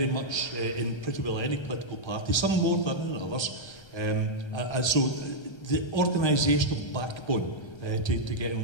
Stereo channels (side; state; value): right; late; 1.3 ms